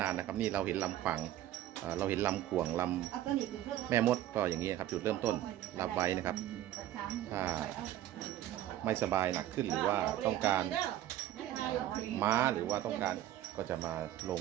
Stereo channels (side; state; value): left; quieter; 13.0 dB